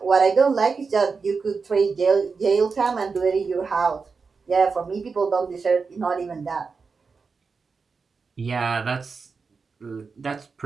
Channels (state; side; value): quieter; left; 4.9 dB